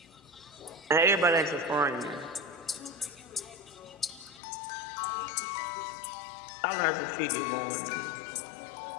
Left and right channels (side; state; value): right; drops out; at 4.4 s